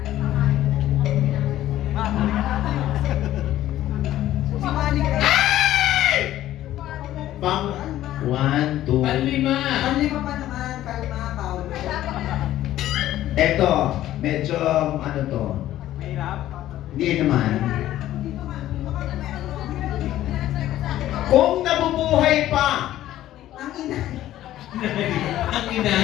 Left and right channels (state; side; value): quieter; right; 13.6 dB